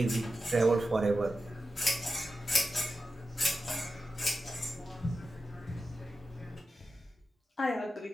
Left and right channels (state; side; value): normal; both; correlation 0.91